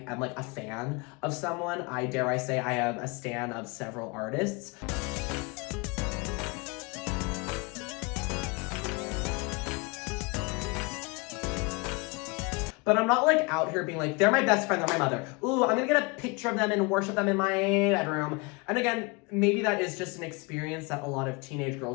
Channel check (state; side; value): quieter; right; 28.6 dB